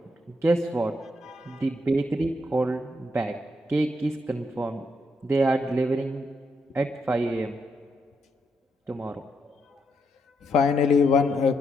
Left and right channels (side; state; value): both; normal; correlation 0.79